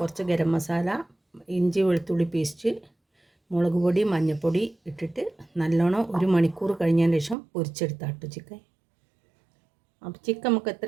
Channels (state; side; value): drops out; left; at 7.4 s